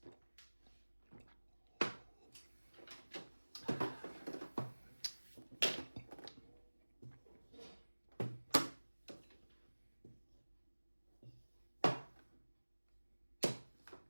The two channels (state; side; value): inverted; both; correlation -1.00